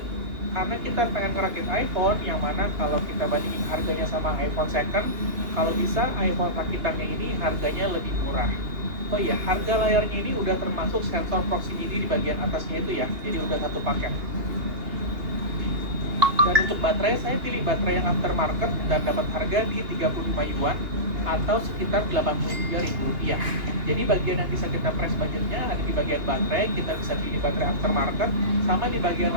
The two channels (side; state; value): left; late; 2.8 ms